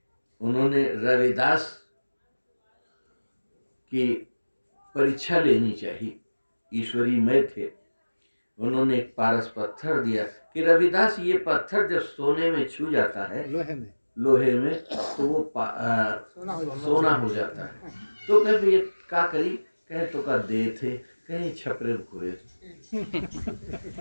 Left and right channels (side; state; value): both; inverted; correlation -1.00